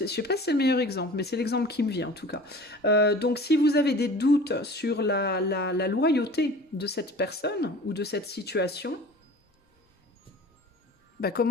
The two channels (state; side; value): normal; both; correlation 0.42